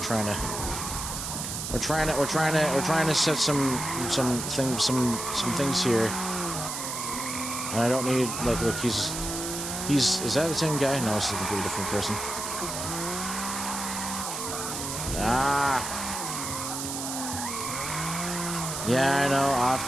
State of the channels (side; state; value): right; noise; hiss, 5 dB below the sound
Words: to set some things here, and I don't need, like, look, he's is that the same guy? No, it's a completely different person. Ah, yeah, I know, off